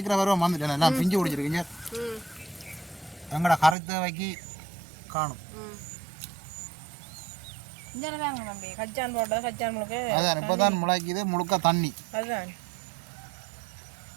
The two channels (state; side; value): drops out; left; at 3.8 s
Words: வரும் வந்துட்டேன், எல்லாம் பிஞ்சு குடிச்சிருக்கீங்க. எங்களோட கரைத்தவைக்கு காணும். இங்கேதாங்க தம்பி கச்சான் போட்டது, கச்சான் முழுக்க அதான் இப்போ தான் முளைக்குது, முழுக்க தண்ணி. அதுதான்